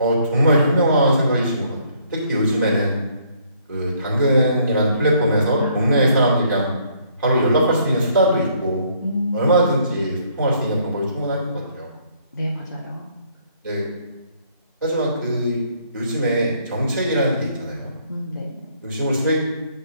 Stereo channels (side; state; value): both; inverted; correlation -0.65